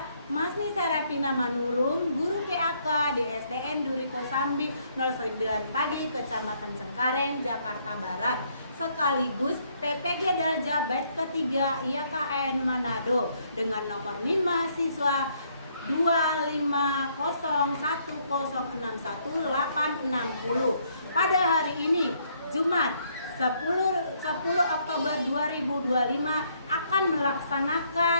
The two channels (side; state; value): both; inverted; correlation -0.69